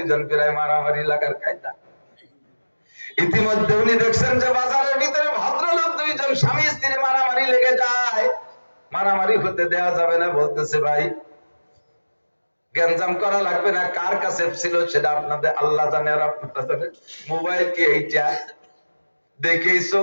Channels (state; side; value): inverted; both; correlation -1.00